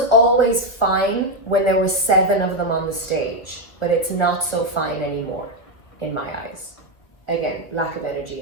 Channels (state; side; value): late; right; 1.2 ms